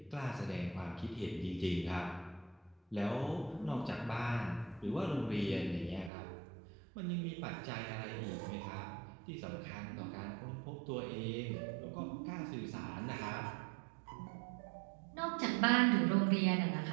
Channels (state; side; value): drops out; left; at 6.1 s